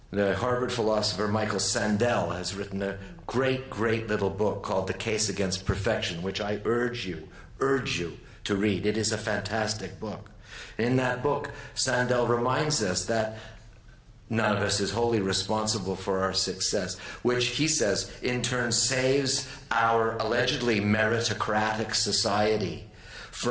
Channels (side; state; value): both; identical; correlation 1.00